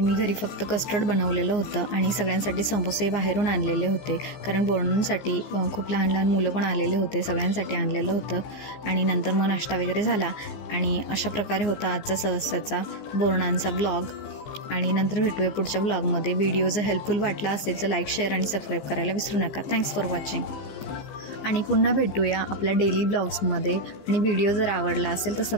घरी फक्त कस्टर्ड बनवलेलं होतं, आणि सगळ्यांसाठी समोसे बाहेरून आणलेले होते, कारण बोरणांसाठी खूप लहान लहान मुलं पण आलेले होते, सगळ्यांसाठी आणलेलं होतं। आणि नंतर मग नाश्ता वगैरे झाला, आणि अशा प्रकारे होता आजचा सहस्ताचा बोरणांचा ब्लॉग। आणि नंतर भेटूया पुढच्या ब्लॉगमध्ये। व्हिडिओ जर हेल्पफुल वाटला असेल तर लाईक, शेअर आणि सबस्क्राईब करायला विसरू नका। Thanks for watching. आणि पुन्हा भेटूया आपल्या डेली ब्लॉग्समध्ये. आणि व्हिडिओ जर आवडला असेल तर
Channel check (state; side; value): late; right; 15 ms